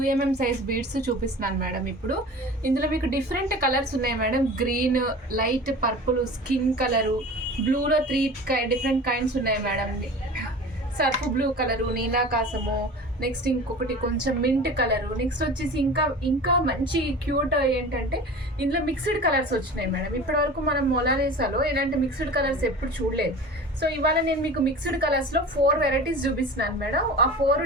size beads చూపిస్తున్నాను మేడం. ఇప్పుడు ఇందులో మీకు డిఫరెంట్ కలర్స్ ఉన్నాయి madam. Green, light purple, skin colour, బ్లూలో 3 డిఫరెంట్ కైండ్స్ ఉన్నాయి మేడం. సర్ఫ్ బ్లూ కలరు, నీలాకాశము, నెక్స్ట్ ఇంకొకటి కొంచెం మింట్ కలరు, నెక్స్ట్ వచ్చేసి ఇంకా మంచి క్యూట్ ఏంటంటే ఇందులో మిక్స్డ్ కలర్స్ వచ్చినాయి మేడం. ఇప్పటివరకు మనం మొనాలిసాలో ఇలాంటి మిక్స్డ్ కలర్స్ ఎప్పుడు చూడలేదు. సో ఇవాళ నేను మీకు మిక్స్డ్ కలర్స్లో 4 వెరైటీస్ చూపిస్తున్నాను మేడం. ఆ 4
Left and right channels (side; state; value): both; normal; correlation 0.37